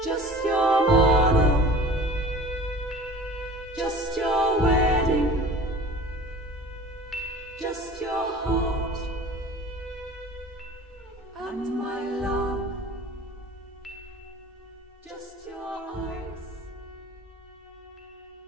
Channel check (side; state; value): both; normal; correlation 0.43